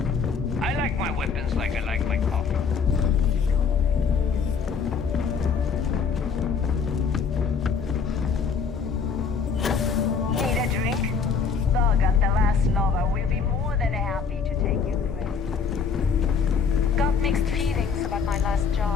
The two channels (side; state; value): right; quieter; 5.9 dB